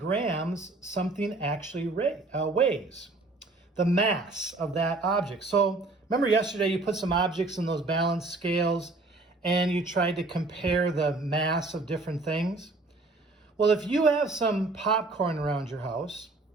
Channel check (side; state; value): left; quieter; 3.2 dB